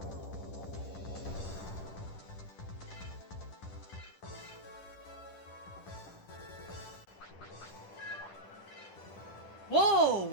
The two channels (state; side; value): late; right; 10 ms